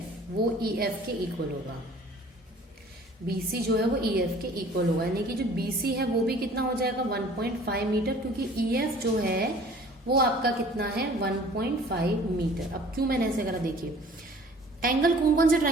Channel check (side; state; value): both; normal; correlation 0.50